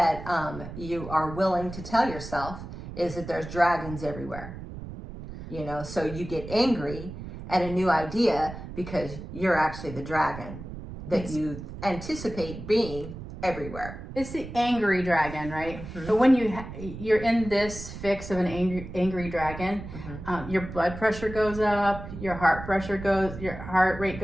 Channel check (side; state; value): right; noise; rumble, 11 dB below the sound